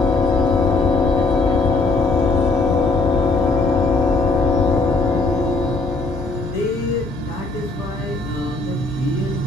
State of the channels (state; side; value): quieter; right; 3.6 dB